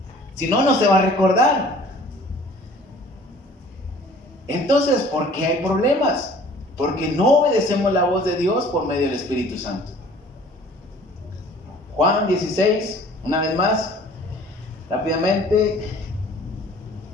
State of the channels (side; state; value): both; normal; correlation 0.51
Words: Si no, no se va a recordar. Entonces, ¿por qué hay problemas? Porque no obedecemos la voz de Dios por medio del Espíritu Santo. Juan 16, una vez más, rápidamente.